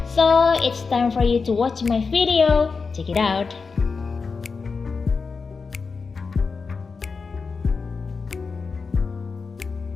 So, it's time for you to watch my video. Check it out.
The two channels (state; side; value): quieter; right; 4.8 dB